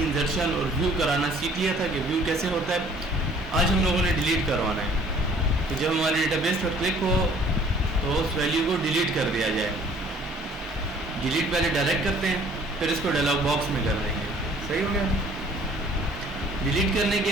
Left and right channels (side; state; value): both; normal; correlation 0.55